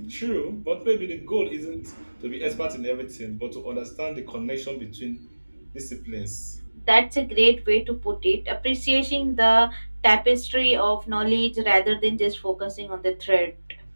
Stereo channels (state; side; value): inverted; both; correlation -1.00